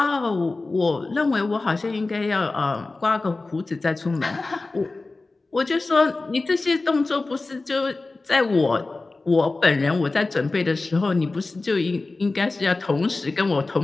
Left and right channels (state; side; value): quieter; right; 3.4 dB